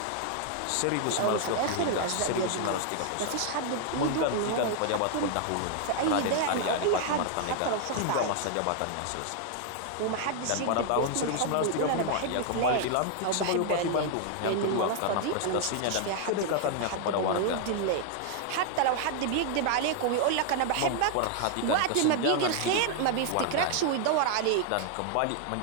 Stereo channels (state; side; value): different; both; correlation 0.00